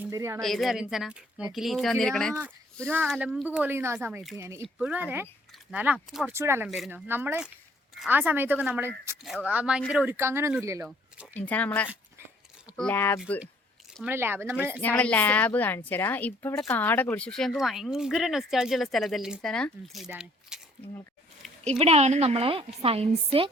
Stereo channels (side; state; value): both; normal; correlation 0.61